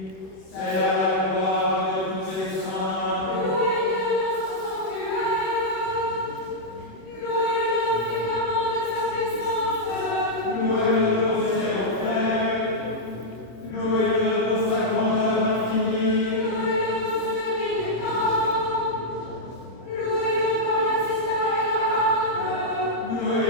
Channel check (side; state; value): right; late; 26 ms